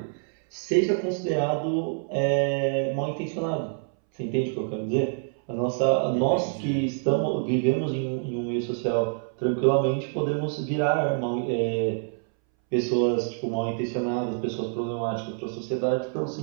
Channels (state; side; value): silent; left; 61 dB below the other